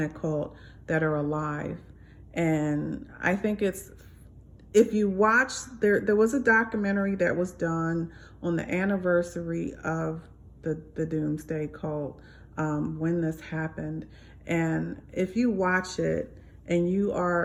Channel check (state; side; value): identical; both; correlation 1.00